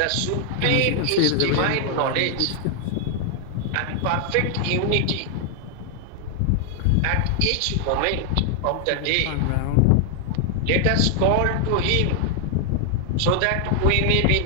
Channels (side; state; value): both; different; correlation 0.00